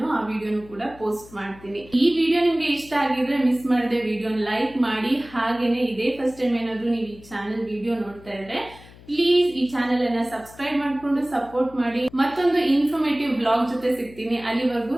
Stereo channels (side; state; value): left; noise; hum, 21 dB below the sound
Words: ಆ ವಿಡಿಯೋನು ಕೂಡ ಪೋಸ್ಟ್ ಮಾಡ್ತೀನಿ. ಈ ವಿಡಿಯೋ ನಿಮ್ಗೆ ಇಷ್ಟ ಆಗಿದ್ರೆ ಮಿಸ್ ಮಾಡದೆ ವಿಡಿಯೋನ ಲೈಕ್ ಮಾಡಿ. ಹಾಗೇನೆ ಇದೇ ಫಸ್ಟ್ ಟೈಮ್ ಏನಾದ್ರು ನೀವು ಈ ಚಾನೆಲ್ ವಿಡಿಯೋ ನೋಡ್ತಾ ಇದ್ರೆ ಪ್ಲೀಸ್ ಈ ಚಾನೆಲ್ ಅನ್ನ ಸಬ್ಸ್ಕ್ರೈಬ್ ಮಾಡ್ಕೊಂಡು ಸಪೋರ್ಟ್ ಮಾಡಿ. ಮತ್ತೊಂದು ಇನ್ಫಾರ್ಮೇಟಿವ್ ಬ್ಲಾಗ್ ಜೊತೆ ಸಿಗ್ತೀನಿ. ಅಲ್ಲಿವರೆಗೂ